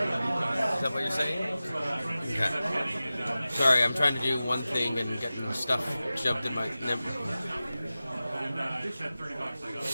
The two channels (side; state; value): both; inverted; correlation -0.95